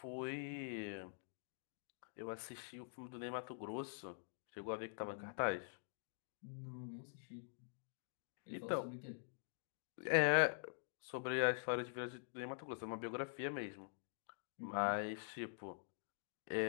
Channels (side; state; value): right; silent; digital silence